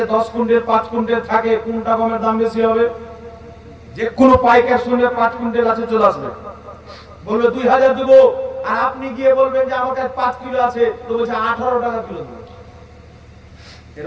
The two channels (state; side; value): identical; both; correlation 1.00